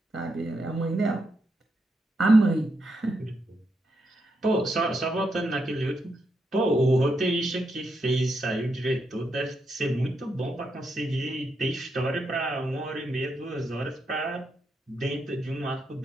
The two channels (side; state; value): both; normal; correlation 0.82